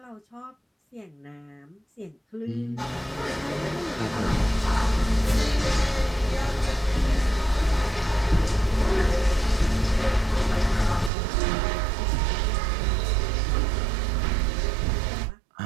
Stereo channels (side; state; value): left; drops out; at 11.1 s